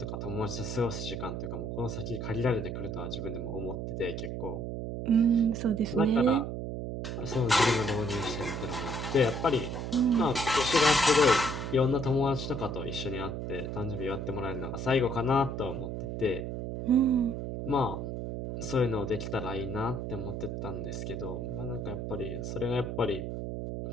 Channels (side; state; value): right; noise; hum, 5 dB below the sound